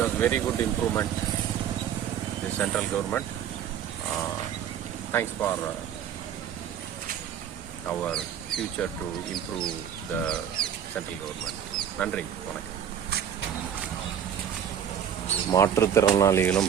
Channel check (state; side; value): quieter; left; 9.0 dB